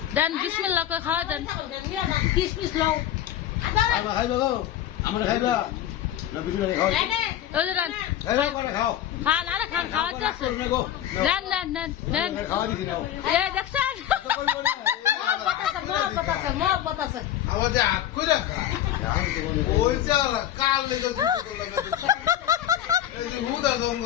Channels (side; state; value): right; quieter; 11.5 dB